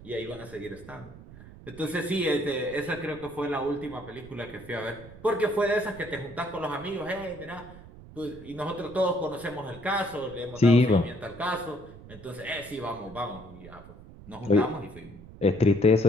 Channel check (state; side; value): noise; right; rumble, 18 dB below the sound